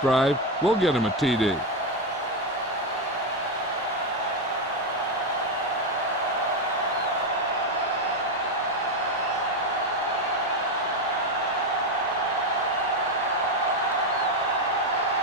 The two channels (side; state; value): both; normal; correlation 0.09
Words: drive will get them a TD.